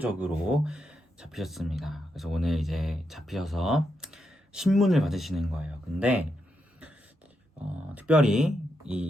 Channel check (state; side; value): normal; both; correlation 0.83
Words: 잡히셨습니다. 그래서 오늘 이제 잡히셔서 신문을 받으시는 거예요. 근데 특별히